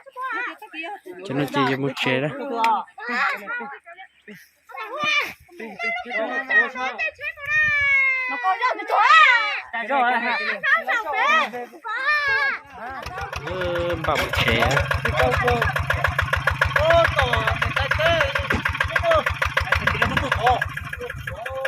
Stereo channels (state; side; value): identical; both; correlation 1.00